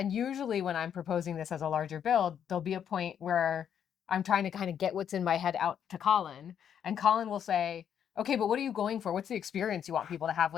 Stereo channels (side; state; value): right; quieter; 8.7 dB